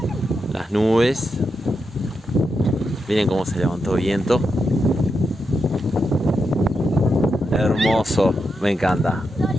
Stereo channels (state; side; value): normal; both; correlation 0.85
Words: nubes. Miren cómo se levantó viento. Hermoso, me encanta.